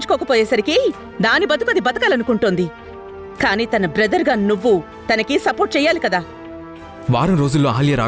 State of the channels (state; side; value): identical; both; correlation 1.00